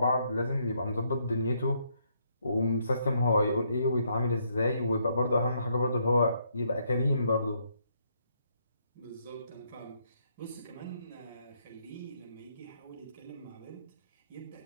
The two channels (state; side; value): inverted; both; correlation -0.73